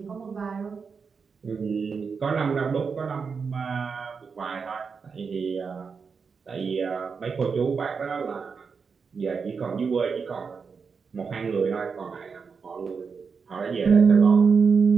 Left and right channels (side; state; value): left; quieter; 5.5 dB